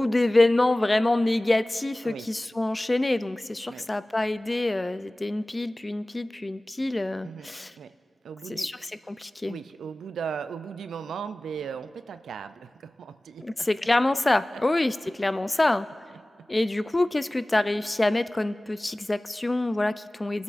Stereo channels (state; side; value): normal; both; correlation 0.98